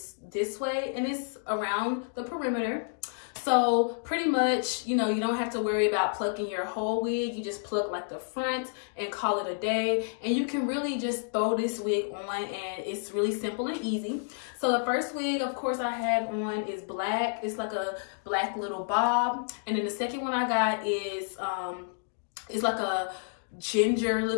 this way and it's around the perimeter. So pretty much, you know, you don't have to worry about plucking your whole wig. You just pluck like the front and call it a day. And you can really just throw this wig on and it's really simple and easy. So the first wig, of course, I have on is black. It's like a black little bob. And then the second one I got is, it's like a ginger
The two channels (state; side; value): silent; right; digital silence